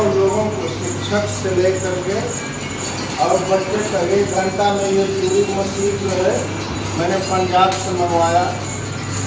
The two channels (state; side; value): identical; both; correlation 1.00